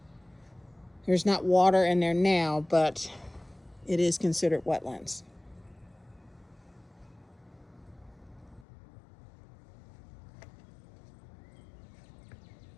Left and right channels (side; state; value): right; drops out; at 8.7 s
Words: There's not water in there now, but it is considered wetlands.